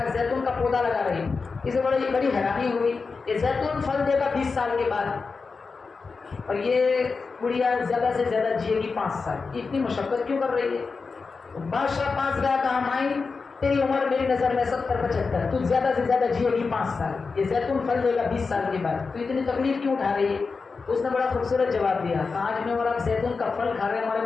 जैतून का पौधा लगा रही, इसे बड़ी हैरानी हुई। ये जैतून फल देगा 20 साल के बाद, और ये गुड़िया ज्यादा से ज्यादा जिएगी 5 साल। इतनी मुशक्कत क्यों कर रही है? बादशाह पास गया, कहा माई तेरी उम्र मेरी नजर में 70-75, तू ज्यादा से ज्यादा जिएगी 5 साल, ये जैतून फल देगा 20 साल के बाद, तो इतनी तकलीफ क्यों उठा रही है? उसने बड़ा खूबसूरत जवाब दिया, आज मैं और आप जैतून का फल खा रहे हैं, हमारे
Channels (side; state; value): right; quieter; 4.6 dB